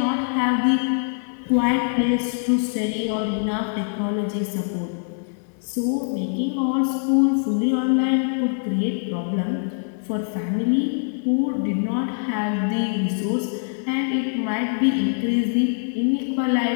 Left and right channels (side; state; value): right; silent; 59 dB below the other